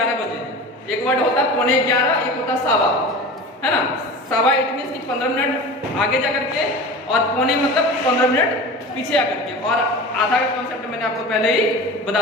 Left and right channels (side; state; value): both; normal; correlation 0.34